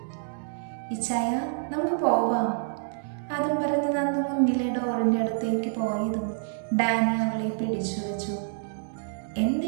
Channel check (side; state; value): left; silent; digital silence